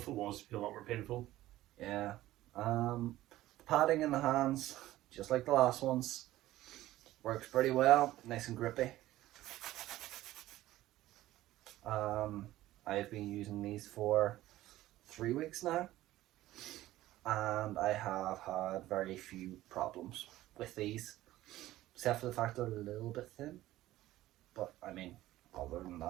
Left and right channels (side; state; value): left; quieter; 15.5 dB